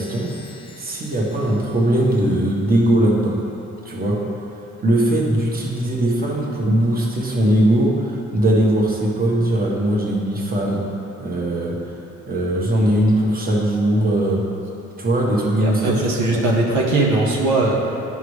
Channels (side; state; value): both; normal; correlation 0.68